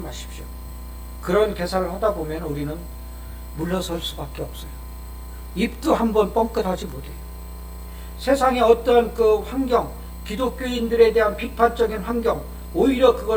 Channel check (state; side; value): identical; both; correlation 1.00